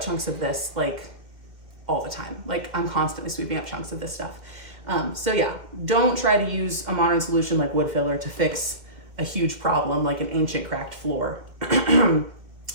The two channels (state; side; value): late; left; 2.2 ms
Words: chunks of this like all the time. Like I'm constantly sweeping up chunks of this stuff. So yeah, don't try to use a modern solution like wood filler to fix a huge problem like an ancient cracked floor.